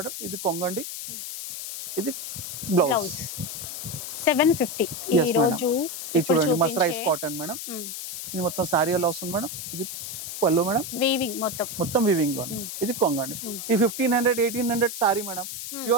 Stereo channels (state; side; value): noise; left; hiss, 7 dB below the sound